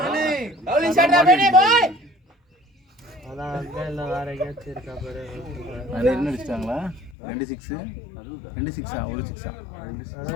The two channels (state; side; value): drops out; right; at 7.2 s